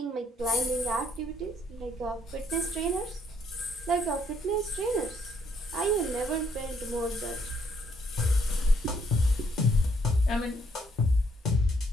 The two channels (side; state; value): both; normal; correlation 0.69